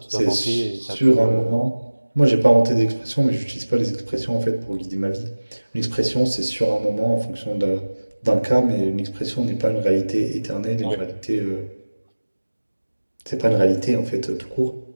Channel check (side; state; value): both; inverted; correlation -1.00